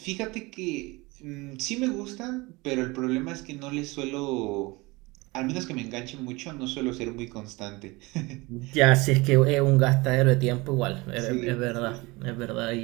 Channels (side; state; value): left; quieter; 23.5 dB